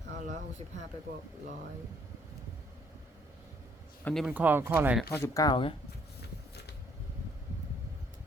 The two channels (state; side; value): normal; both; correlation 0.65